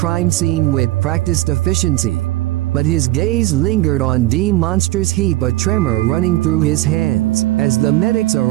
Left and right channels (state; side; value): quieter; left; 16.8 dB